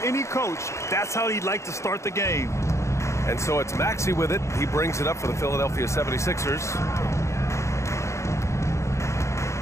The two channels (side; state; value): right; late; 0.14 ms